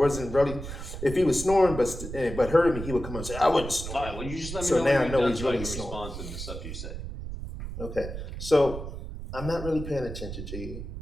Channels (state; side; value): noise; right; rumble, 8 dB below the sound